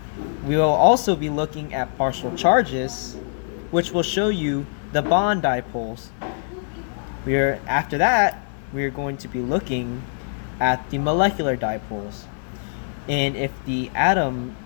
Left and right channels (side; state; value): right; silent; 62 dB below the other